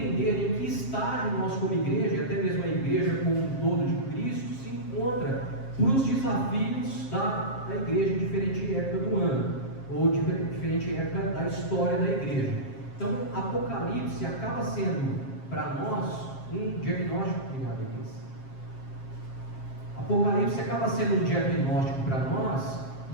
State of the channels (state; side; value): late; right; 7.5 ms